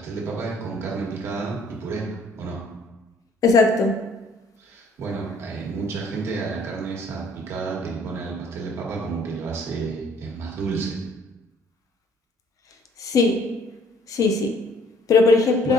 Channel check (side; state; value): both; normal; correlation 0.60